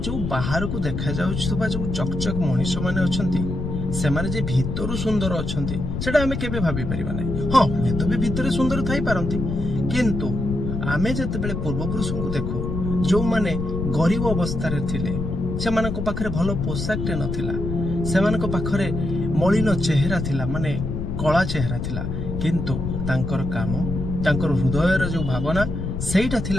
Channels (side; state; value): left; noise; rumble, 3 dB below the sound